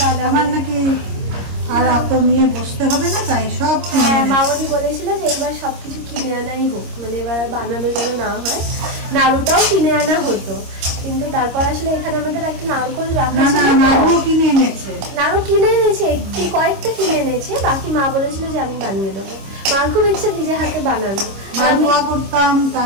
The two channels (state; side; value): late; left; 26 ms